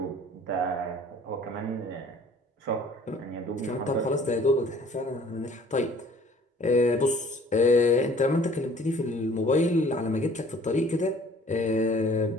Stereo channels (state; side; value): normal; both; correlation 0.52